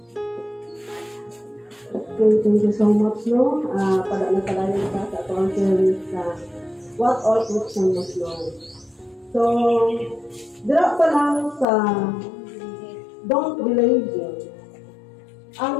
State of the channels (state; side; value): drops out; right; at 11.7 s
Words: Okay, thank you so much, no? Padalang ka sa atong theory sa what all Christians must know. So, dira pa lang sa don't be lazy.